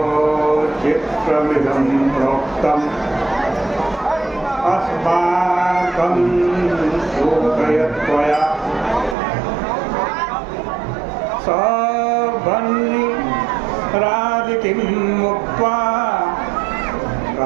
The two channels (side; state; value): left; drops out; at 9.2 s